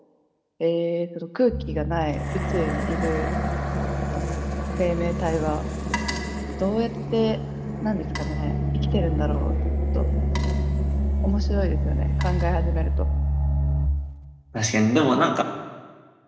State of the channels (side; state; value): both; identical; correlation 1.00